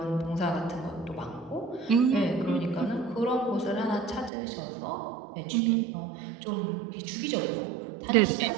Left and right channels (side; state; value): left; drops out; at 4.3 s